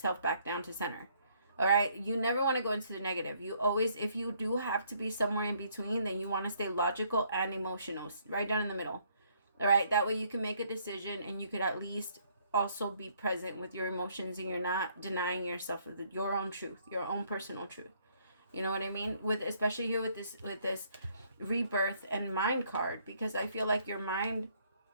back down to center. All right? You never want to go into the negative. You always, if you do have to be somewhere in between, then you want to stay logical and emotional, right down in the middle. All right? That way you can make a decision, and you could at least also be present with your emotions, and you're not denying yourself of your own truth, your own personal truth. You know what I mean? Especially here with this rebirth and mind card, because I feel like your mind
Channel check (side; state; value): both; inverted; correlation -0.66